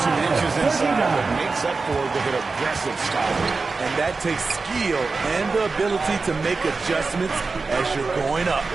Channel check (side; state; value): left; quieter; 4.1 dB